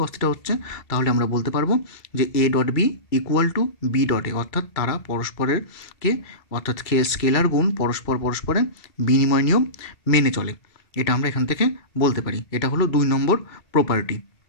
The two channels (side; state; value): right; late; 2.3 ms